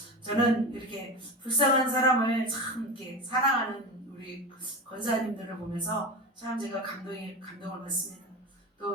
저는 이렇게 불쌍한 사람을 참 이렇게 사랑하는 우리 권사님들을 보면서 참 제가 감동을 받습니다.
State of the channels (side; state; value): both; normal; correlation 0.24